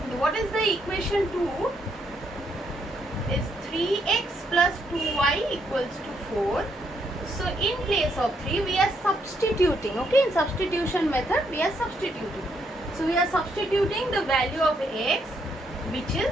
what is the equation 2? Is 3x plus 2y equals to 4. So in place of 3, we are substituting. Okay, in substitution method, we are substituting. So we are substituting the value of x which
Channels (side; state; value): both; normal; correlation 0.74